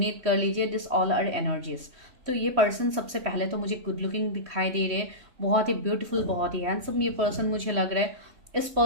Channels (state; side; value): late; left; 3.1 ms